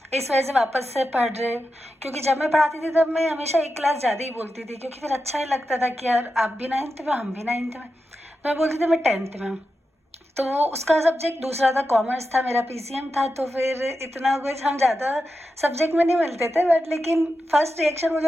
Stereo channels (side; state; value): both; normal; correlation 0.90